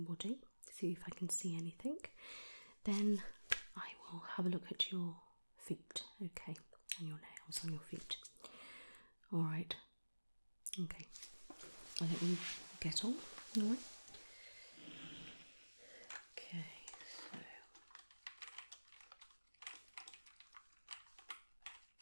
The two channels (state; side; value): inverted; both; correlation -1.00